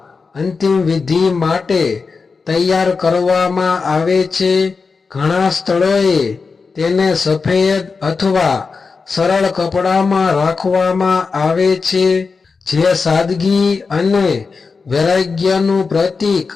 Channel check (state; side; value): quieter; right; 4.7 dB